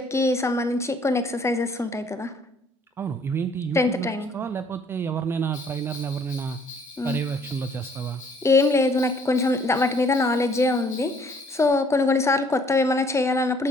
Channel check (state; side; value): normal; both; correlation 0.60